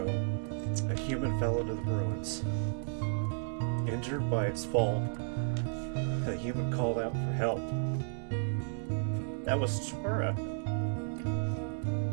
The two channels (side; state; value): left; silent; digital silence